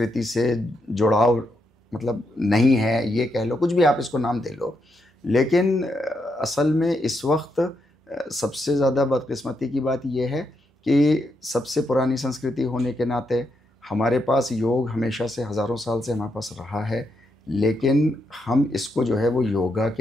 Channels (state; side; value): normal; both; correlation 0.81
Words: से जुड़ाव मतलब नहीं है, ये कह लो, कुछ भी आप इसको नाम दे लो। लेकिन असल में इस वक्त सबसे ज़्यादा बदकिस्मती की बात यह है कि सबसे पुरानी संस्कृति होने के नाते हमारे पास योग हमेशा से हज़ारों साल से हमारे पास रहा है, लेकिन हम इसको जो है वो योगा